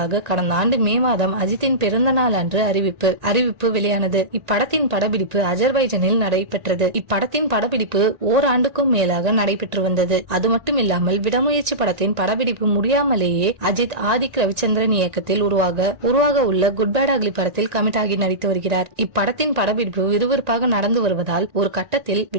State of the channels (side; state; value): left; late; 1.9 ms